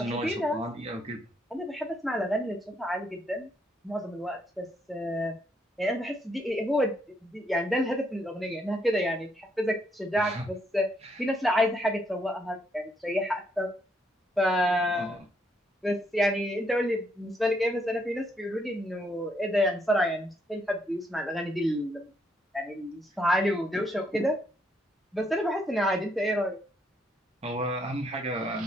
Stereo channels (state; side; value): normal; both; correlation 0.73